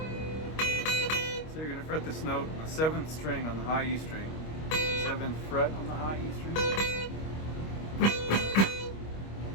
So you're going to fret this note on the 7th string on the high E string, 7th fret on the high E string.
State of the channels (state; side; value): late; right; 25 ms